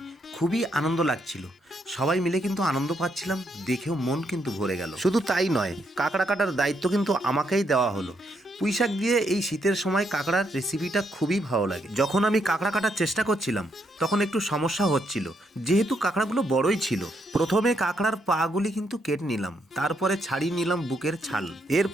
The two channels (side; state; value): both; normal; correlation 0.76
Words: খুবই আনন্দ লাগছিল। সবাই মিলে কিন্তু আনন্দ পাচ্ছিলাম, দেখেও মন কিন্তু ভরে গেল। শুধু তাই নয়, কাঁকড়া কাটার দায়িত্ব কিন্তু আমাকেই দেওয়া হলো। পুঁইশাক দিয়ে এই শীতের সময় কাঁকড়ার রেসিপিটা খুবই ভালো লাগে। যখন আমি কাঁকড়া কাটার চেষ্টা করছিলাম তখন একটু সমস্যা হচ্ছিল, যেহেতু কাঁকড়াগুলো বড়ই ছিল। প্রথমে কাঁকড়ার পাগুলি কিন্তু কেটে নিলাম, তারপরে ছাড়িয়ে নিলাম বুকের ছাল।